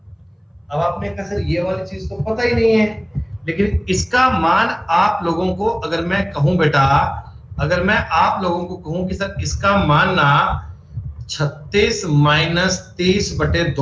अब आपने कहा सर ये वाली चीज तो पता ही नहीं है, लेकिन इसका मान आप लोगों को अगर मैं कहूं बेटा, अगर मैं आप लोगों को कहूं कि सर इसका मान ना 36 माइनस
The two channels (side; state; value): both; identical; correlation 1.00